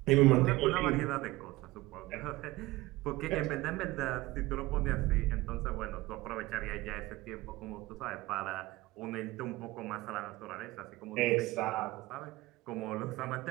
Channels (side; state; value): left; quieter; 19.6 dB